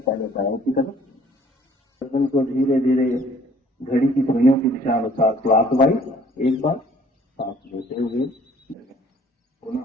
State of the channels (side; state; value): both; normal; correlation 0.57